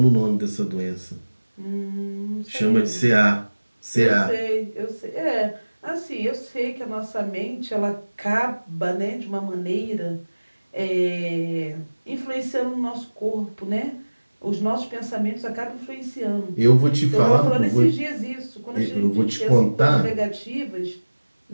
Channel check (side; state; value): both; inverted; correlation -1.00